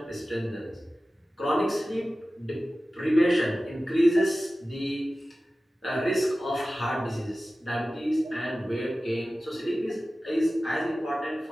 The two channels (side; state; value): both; normal; correlation 0.96